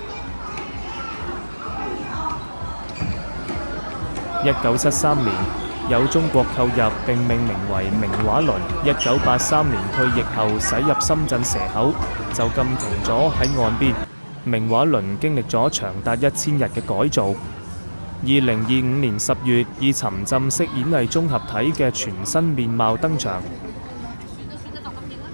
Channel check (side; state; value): both; inverted; correlation -1.00